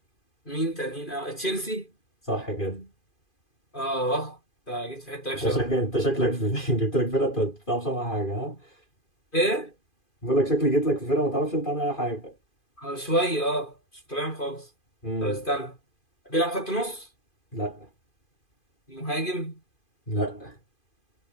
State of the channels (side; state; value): right; late; 2.5 ms